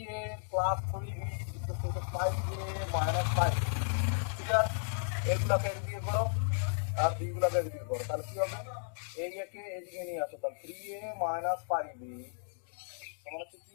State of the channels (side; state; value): right; silent; digital silence